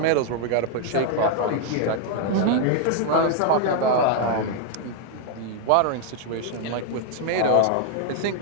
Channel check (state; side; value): different; both; correlation 0.01